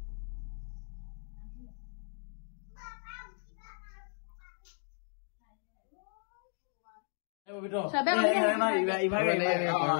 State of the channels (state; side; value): silent; right; 54 dB below the other